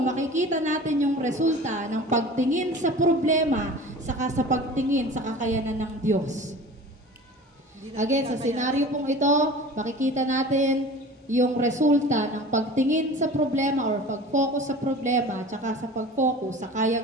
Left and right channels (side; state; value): both; normal; correlation 0.39